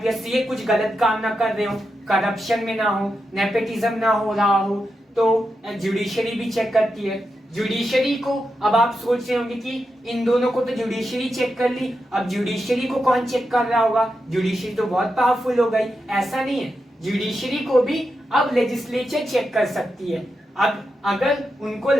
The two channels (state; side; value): normal; both; correlation 0.87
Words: ये कुछ गलत काम ना कर रहे हो, करप्शन में ना हो, नेपोटिज्म ना हो रहा हो, तो जुडिशरी भी चेक करती है। जुडिशरी को अब आप सोच रहे होंगे कि इन दोनों को तो जुडिशरी चेक कर ली, अब जुडिशरी को कौन चेक कर रहा होगा? जुडिशरी तो बहुत पावरफुल हो गई। ऐसा नहीं है, जुडिशरी को भी अब लेजिस्लेचर चेक कर सकती है। अब अगर उनको